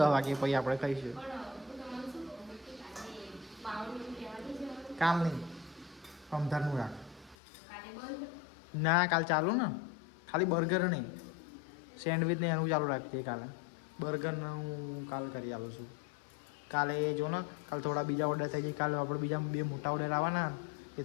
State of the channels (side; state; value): right; drops out; at 7.4 s